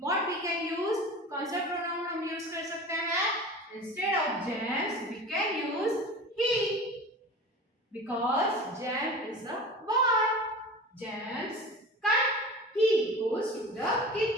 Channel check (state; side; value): normal; both; correlation 0.35